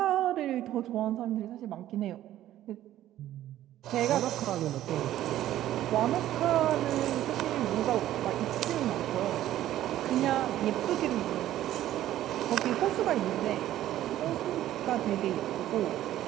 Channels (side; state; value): left; quieter; 13.2 dB